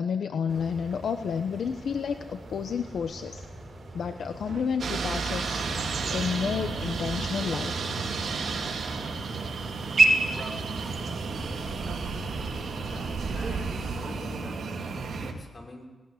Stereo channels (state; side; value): normal; both; correlation 0.80